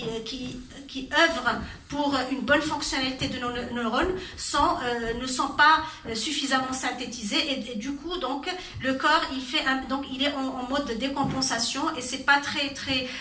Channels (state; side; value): identical; both; correlation 1.00